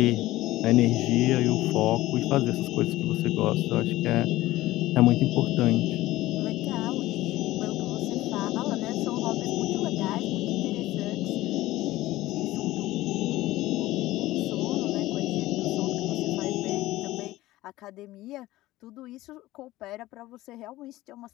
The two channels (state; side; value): quieter; right; 17.0 dB